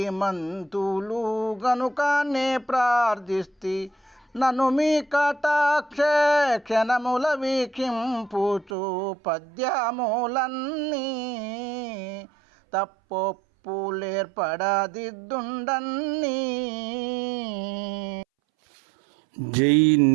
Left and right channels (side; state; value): left; drops out; at 8.7 s